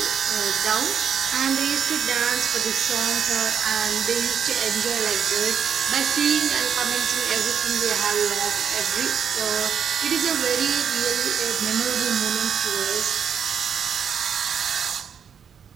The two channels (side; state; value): left; quieter; 7.6 dB